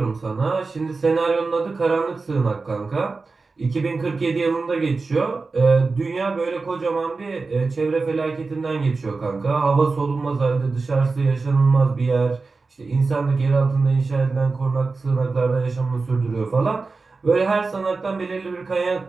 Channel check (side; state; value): left; quieter; 4.0 dB